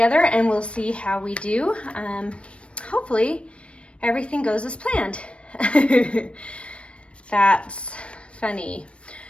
and we'll see how we do. Hopefully everything goes as planned. That's funny.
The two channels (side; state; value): right; late; 0.060 ms